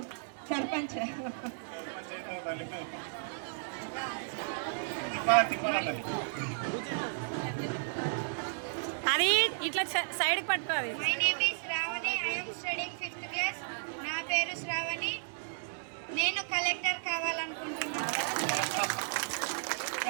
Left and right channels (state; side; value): silent; left; 55 dB below the other